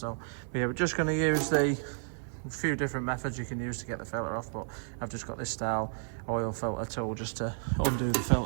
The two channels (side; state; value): left; silent; 55 dB below the other